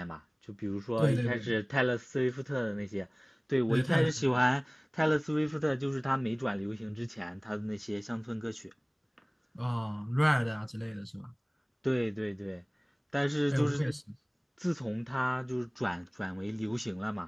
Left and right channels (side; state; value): both; identical; correlation 1.00